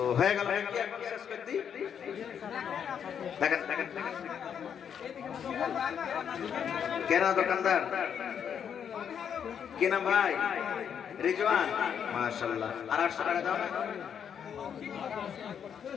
হয়ে গেল। শেষ করে দিই, দেখেন দেখেন কেনা দোকানদার কেনা ভাই রিজওয়ান, মাশাআল্লাহ। আর 800 টাকা দাও না,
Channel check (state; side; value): quieter; right; 8.0 dB